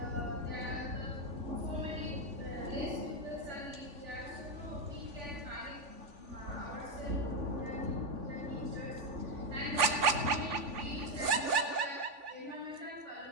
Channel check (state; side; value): late; left; 3.5 ms